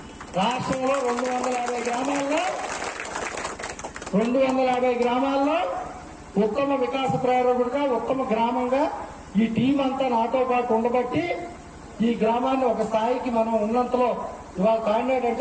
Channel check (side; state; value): both; identical; correlation 1.00